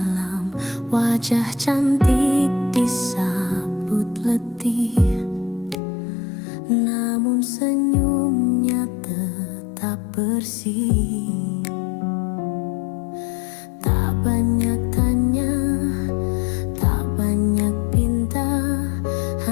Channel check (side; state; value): right; drops out; at 5.8 s